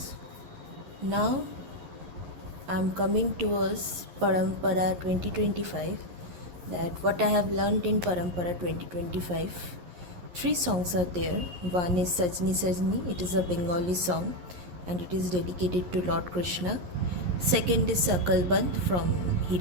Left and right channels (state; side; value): late; left; 11 ms